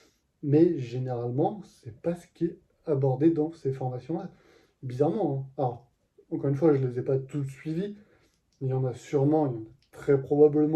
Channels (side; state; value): both; identical; correlation 1.00